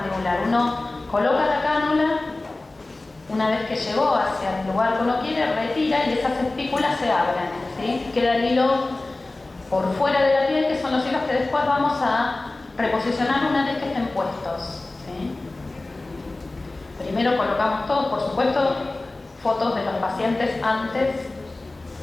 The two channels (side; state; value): right; quieter; 3.0 dB